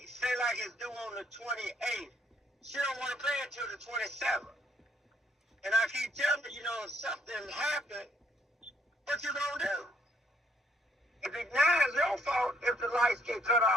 Say like it's due on the 28th. She don't want to pay it till the 27th. And I keep telling her, if something happened, what you gonna do? If it's not your fault if the lights get cut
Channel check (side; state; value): both; normal; correlation 0.69